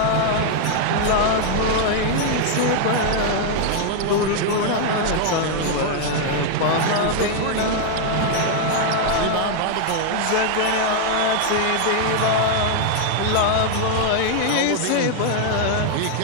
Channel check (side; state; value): both; different; correlation 0.00